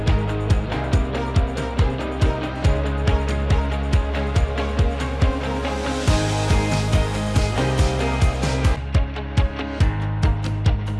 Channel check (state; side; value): identical; both; correlation 1.00